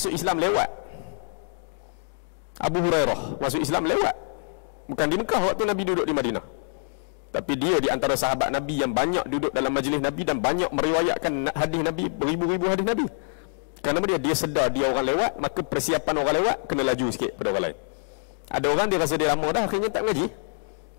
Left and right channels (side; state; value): right; silent; digital silence